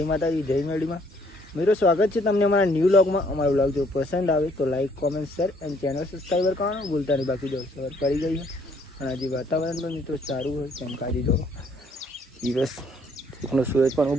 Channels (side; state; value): both; normal; correlation 0.64